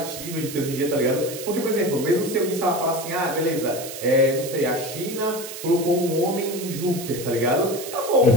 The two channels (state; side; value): noise; right; hiss, 10 dB below the sound